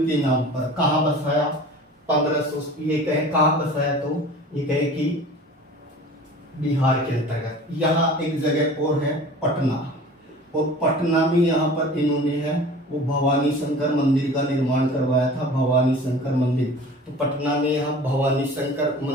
के नाम पर। कहाँ बसाया, 1500 ये कहे कहाँ बसाया, तो ये कहे कि बिहार के अंतर्गत। यहाँ एक जगह और है पटना, और पटना में यहाँ पर इन्होंने है वो भवानी शंकर मंदिर का निर्माण करवाया था। भवानी शंकर मंदिर, तो पटना में यहाँ भवानी शंकर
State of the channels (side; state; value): both; normal; correlation 0.41